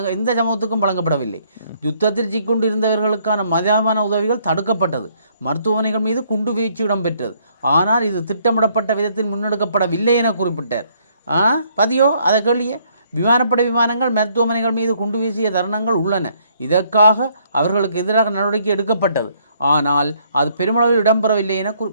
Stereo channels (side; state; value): both; inverted; correlation -0.67